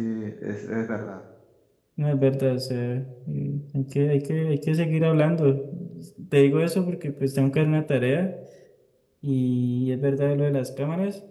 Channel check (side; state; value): both; identical; correlation 1.00